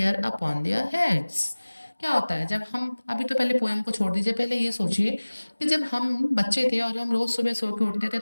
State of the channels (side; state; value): both; inverted; correlation -1.00